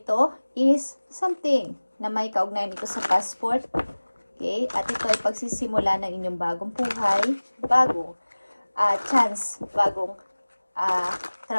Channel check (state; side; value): inverted; both; correlation -1.00